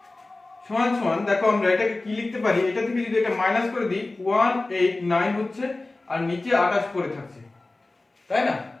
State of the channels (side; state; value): right; quieter; 3.1 dB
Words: সমান সমান দেখো আমরা এটাকে কি লিখতে পারি, এটা থেকে যদি এটা মাইনাস করে দিই 189 হচ্ছে আর নিচে 28 পড়ে থাকছে, তাই না।